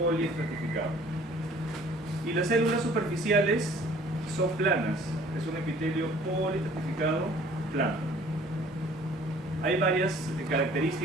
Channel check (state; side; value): normal; both; correlation 0.53